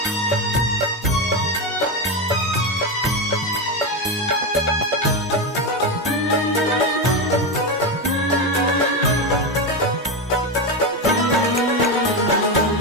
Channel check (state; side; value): normal; both; correlation 0.13